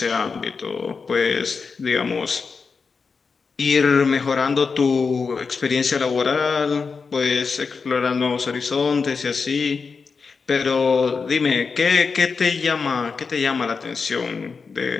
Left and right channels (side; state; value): right; quieter; 5.1 dB